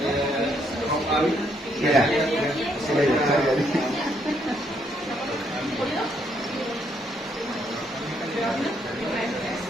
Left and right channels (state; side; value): normal; both; correlation 0.72